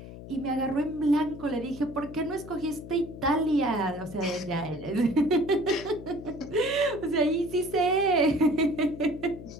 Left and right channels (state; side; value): noise; left; hum, 14 dB below the sound